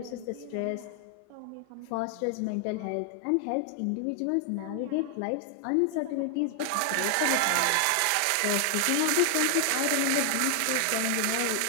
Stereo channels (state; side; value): different; both; correlation 0.00